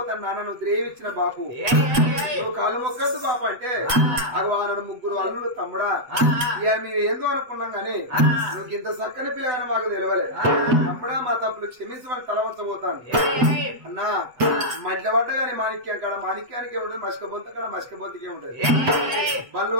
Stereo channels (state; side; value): late; left; 8.1 ms